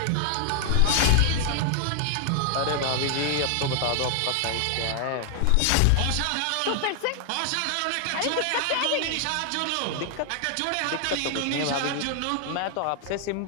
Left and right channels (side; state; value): both; different; correlation 0.00